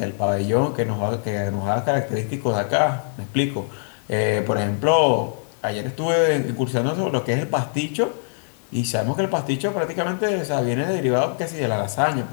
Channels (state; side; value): silent; right; digital silence